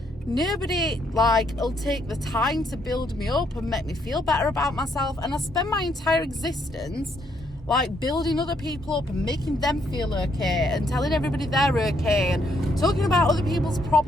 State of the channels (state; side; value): normal; both; correlation 0.72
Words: nobody, like, will take the time to build me up and make me feel better about myself. And I spend my entire existence, like, building other people up and making them feel okay and telling everybody they're okay and talking about other people's